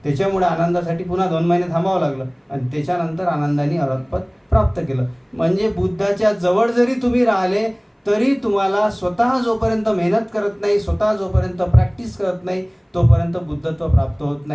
त्याच्यामुळे आनंदासाठी पुन्हा 2 महिने थांबावं लागलं आणि त्याच्यानंतर आनंदाने अरहतपद प्राप्त केलं. म्हणजे बुद्धाच्या जवळ जरी तुम्ही राहिले तरी तुम्हाला स्वतः जोपर्यंत मेहनत करत नाही, स्वतः जोपर्यंत प्रॅक्टिस करत नाही, तोपर्यंत बुद्धत्व प्राप्त होत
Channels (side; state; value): both; identical; correlation 1.00